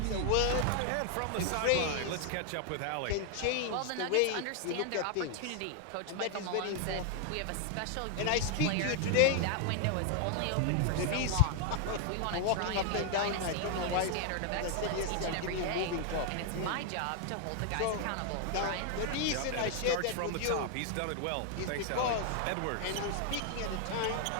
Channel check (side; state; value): both; different; correlation 0.00